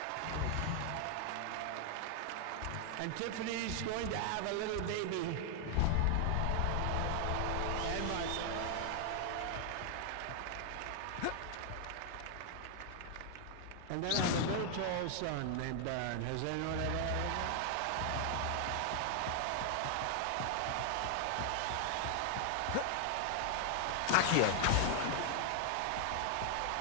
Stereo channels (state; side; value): different; both; correlation 0.00